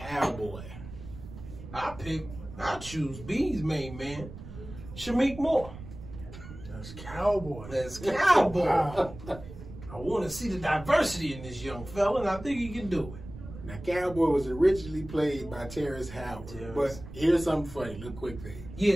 I choose B's main man, Shameik Moore. that's Cowboy. That's Cowboy. Wow. I want to see the diversity in this young fella, and I think he can do it. Now, Cowboy was originally played by Terrence Howard. But here's something funny, little quick thing.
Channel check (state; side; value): noise; right; rumble, 13 dB below the sound